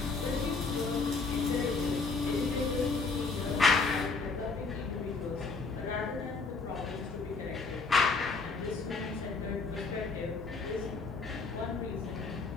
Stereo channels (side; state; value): right; quieter; 4.2 dB